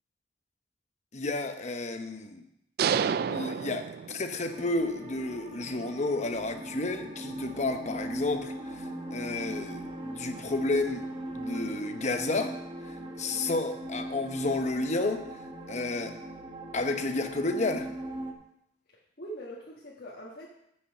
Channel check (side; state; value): both; normal; correlation 0.32